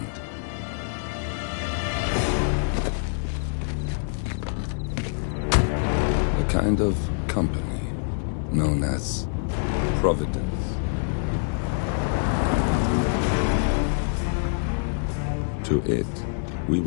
A kind of company known as Providence. To it, we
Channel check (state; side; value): silent; right; digital silence